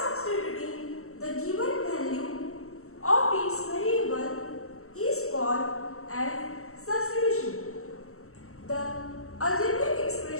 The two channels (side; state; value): right; late; 0.63 ms